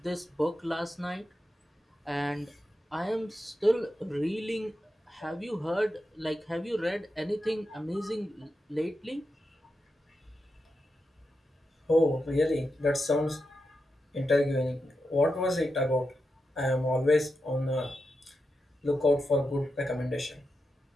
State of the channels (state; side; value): normal; both; correlation 0.88